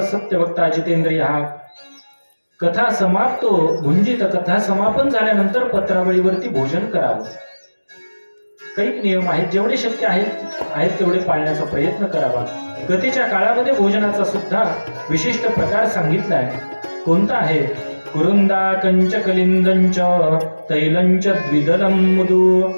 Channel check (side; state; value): both; inverted; correlation -1.00